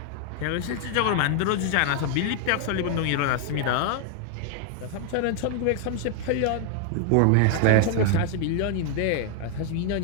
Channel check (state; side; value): different; both; correlation 0.00